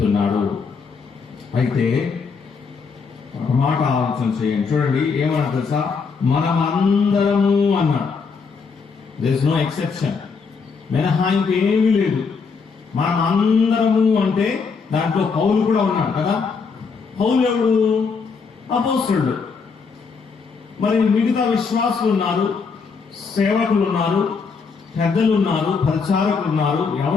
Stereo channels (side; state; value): right; quieter; 5.2 dB